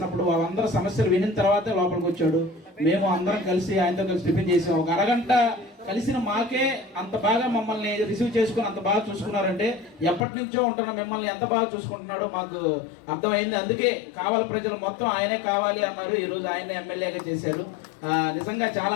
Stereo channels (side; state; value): right; drops out; at 10.2 s